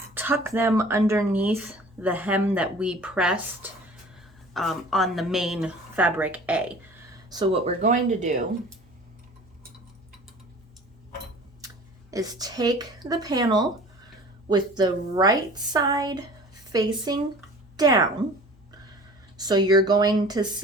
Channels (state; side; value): normal; both; correlation 0.44